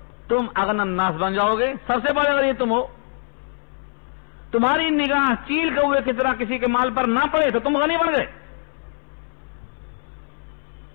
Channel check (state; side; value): silent; right; 61 dB below the other